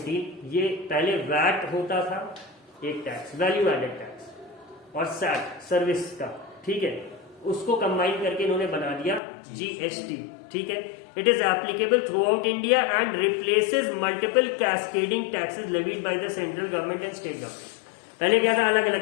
ये पहले वैट होता था, एक टैक्स, वैल्यू एडेड टैक्स, और सैट सर्विस का, ठीक है, उसको कंबाइन करके इन्होंने बना दिया जीएसटी. ठीक है. It is applicable through out India and replaces multiple cascading taxes levied by the central government and state government. पहले क्या था, अलग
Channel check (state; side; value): drops out; right; at 9.2 s